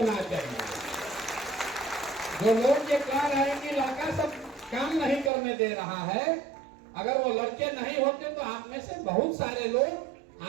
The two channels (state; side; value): drops out; left; at 5.3 s